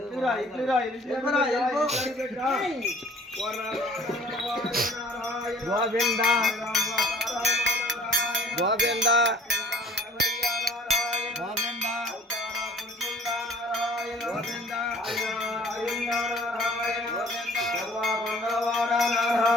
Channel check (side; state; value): both; normal; correlation 0.51